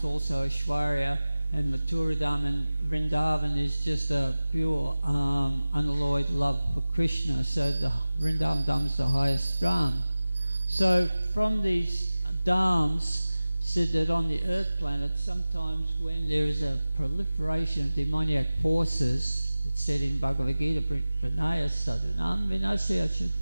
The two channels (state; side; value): inverted; both; correlation -0.97